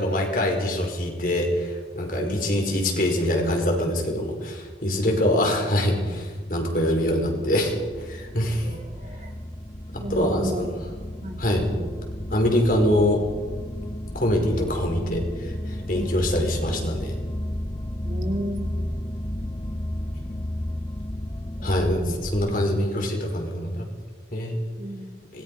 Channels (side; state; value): both; normal; correlation 0.61